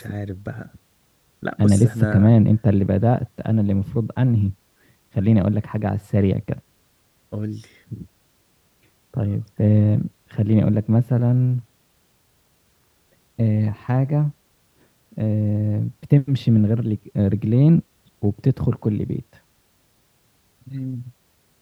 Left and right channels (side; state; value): both; identical; correlation 1.00